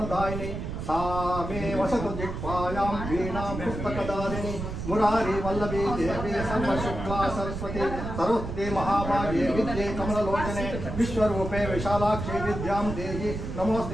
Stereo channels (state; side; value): noise; right; rumble, 6 dB below the sound